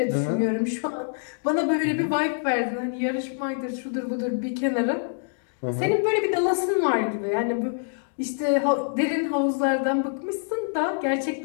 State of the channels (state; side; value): silent; right; digital silence